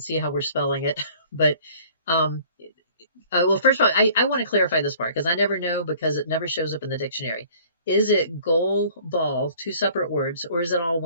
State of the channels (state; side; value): inverted; both; correlation -0.52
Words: see how we're spelling it. But well, first of all, I want to clarify this part because I never know because it never shows up in the dictionary. Is it goal ball, two separate words, or is it all